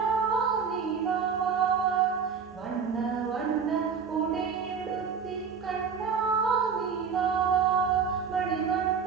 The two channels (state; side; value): quieter; left; 6.3 dB